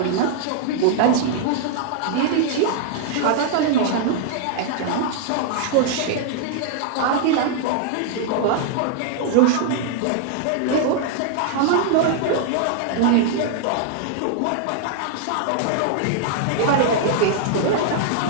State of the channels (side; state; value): both; different; correlation -0.01